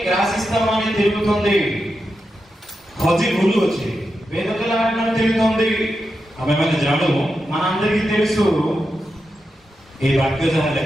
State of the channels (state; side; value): normal; both; correlation 0.88